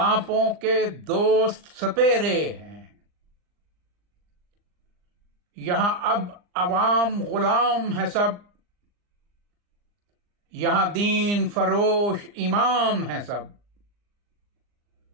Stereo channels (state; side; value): late; left; 39 ms